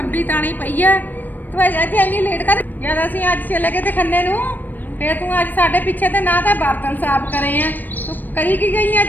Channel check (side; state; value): right; late; 0.089 ms